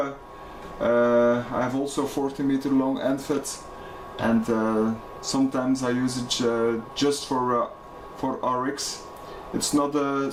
I have also 40 meter long end fed, and sometimes I use it just for RX. It's not a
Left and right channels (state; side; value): identical; both; correlation 1.00